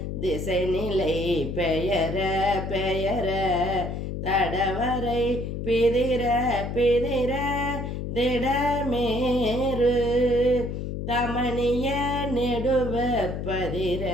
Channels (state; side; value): noise; left; hum, 5 dB below the sound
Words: திசை நிலை பெயர பெயர தடவரை பிதிர பிதிர திடமேறு தமணிய நெடுவ பதிர